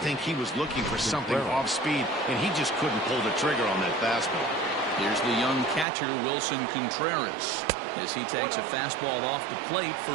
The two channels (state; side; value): drops out; left; at 5.9 s